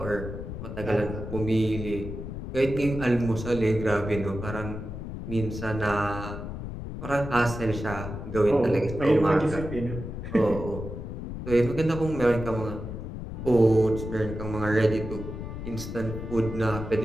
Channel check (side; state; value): left; noise; rumble, 8 dB below the sound